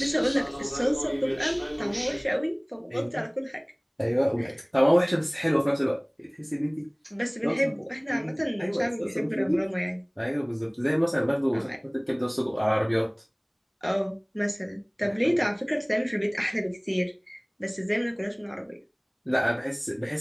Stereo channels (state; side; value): identical; both; correlation 1.00